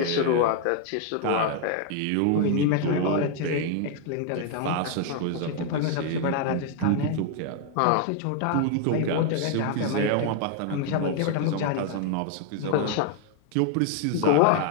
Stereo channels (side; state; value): both; different; correlation 0.00